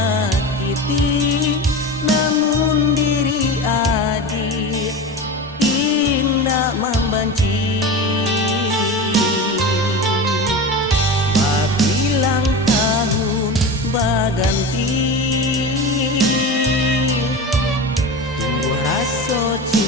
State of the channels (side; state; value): both; normal; correlation 0.27